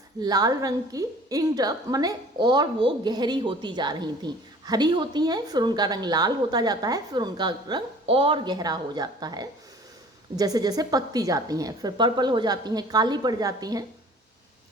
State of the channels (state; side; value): normal; both; correlation 0.48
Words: लाल रंग की, इंड अप माने और वो गहरी होती जा रही थी। हरी होती हैं, फिर उनका रंग लाल होता जाता है, फिर उनका रंग और गहरा हो जाता है जैसे जैसे पकती जाती हैं, फिर पर्पल हो जाती हैं, काली पड़ जाती हैं,